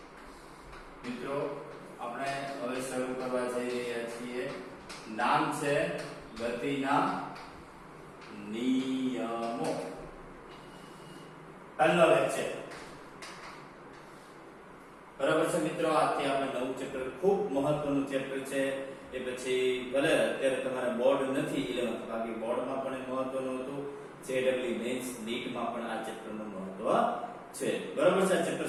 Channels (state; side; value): identical; both; correlation 1.00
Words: મિત્રો આપણે હવે શરૂ કરવા જઈ રહ્યા છીએ. નામ છે ગતિના નિયમો. પહેલો લેક્ચર બરાબર છે મિત્રો. આજથી આપણે નવું ચેપ્ટર, ખૂબ મહત્વનું ચેપ્ટર છે. એ પછી ભલે અત્યારે તમારે બોર્ડ નથી 11th, બાકી બોર્ડમાં પણ મહત્વનું હતું. જેડબલ્યુ મેન્સ નીટમાં પણ આ ચેપ્ટરનું મહત્વ છે. બરાબર છે. આ ચેપ્ટર